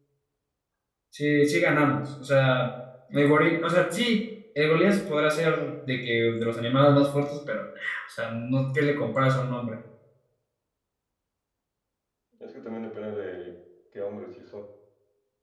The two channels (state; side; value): identical; both; correlation 1.00